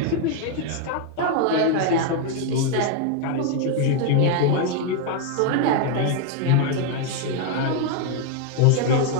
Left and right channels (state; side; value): different; both; correlation 0.01